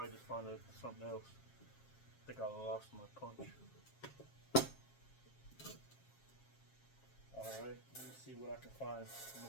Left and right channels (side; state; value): right; late; 7.4 ms